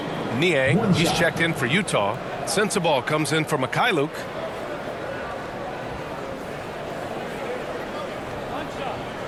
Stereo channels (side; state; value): both; identical; correlation 1.00